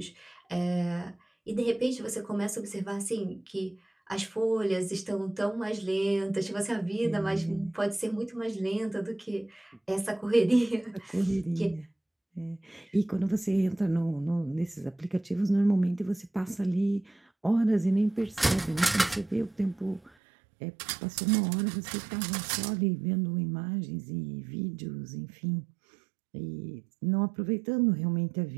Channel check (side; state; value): left; drops out; at 20.1 s